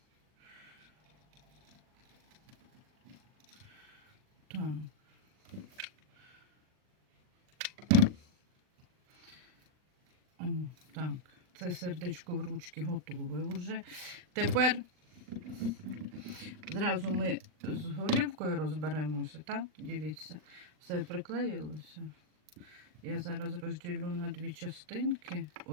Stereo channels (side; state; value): left; late; 39 ms